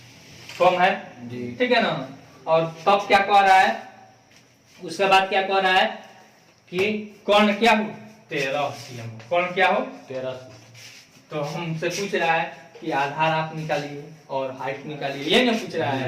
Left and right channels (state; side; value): identical; both; correlation 1.00